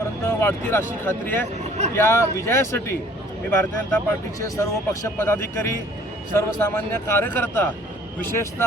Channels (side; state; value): both; normal; correlation 0.55